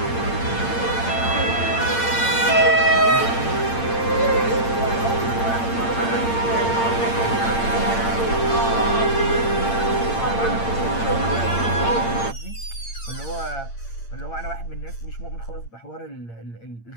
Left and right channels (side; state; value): right; late; 8.7 ms